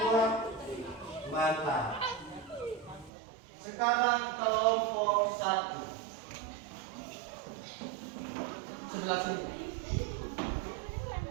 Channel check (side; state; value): left; drops out; at 3.1 s